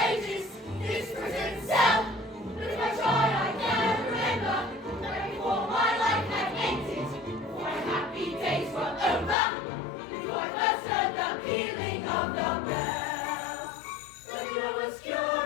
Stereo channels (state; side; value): drops out; right; at 9.3 s